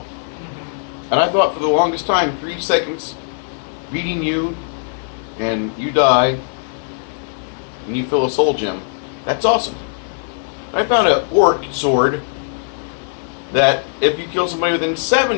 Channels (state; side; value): silent; right; 60 dB below the other